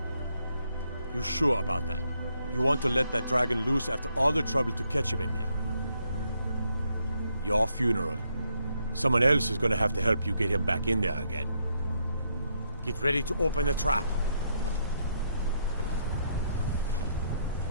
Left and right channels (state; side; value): inverted; both; correlation -0.76